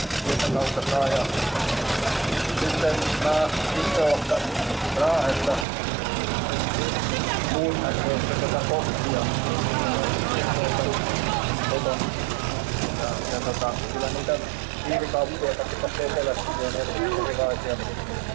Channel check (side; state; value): left; drops out; at 5.7 s